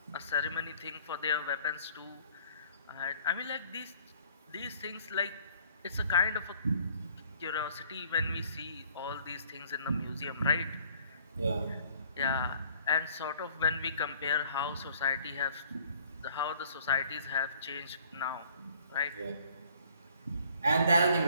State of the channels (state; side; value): inverted; both; correlation -0.57